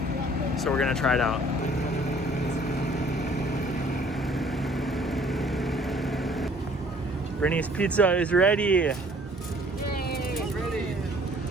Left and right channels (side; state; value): both; normal; correlation 0.56